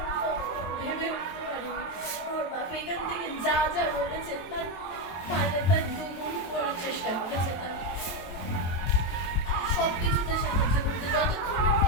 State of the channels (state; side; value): late; right; 23 ms